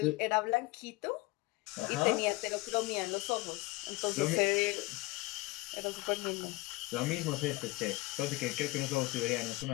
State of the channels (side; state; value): right; quieter; 21.5 dB